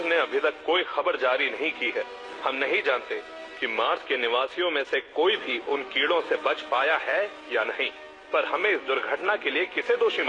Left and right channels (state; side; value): identical; both; correlation 1.00